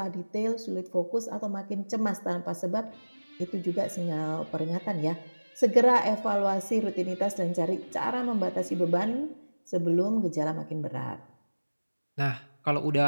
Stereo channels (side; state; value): both; inverted; correlation -1.00